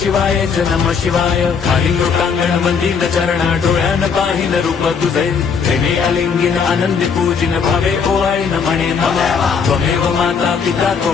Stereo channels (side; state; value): right; quieter; 6.1 dB